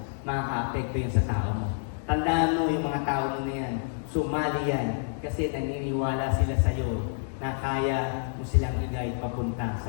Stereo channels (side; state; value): right; silent; digital silence